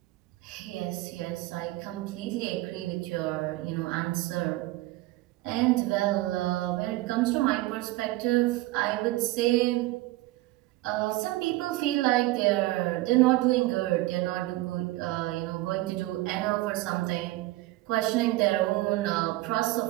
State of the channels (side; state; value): left; quieter; 18.5 dB